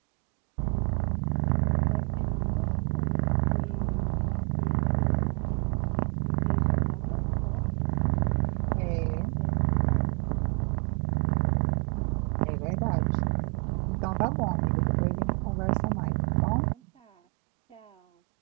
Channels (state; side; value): quieter; left; 34.5 dB